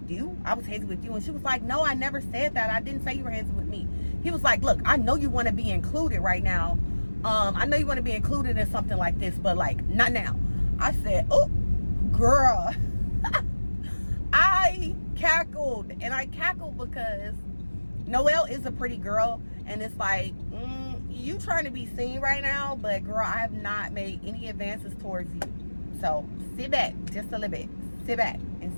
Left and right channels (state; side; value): inverted; both; correlation -1.00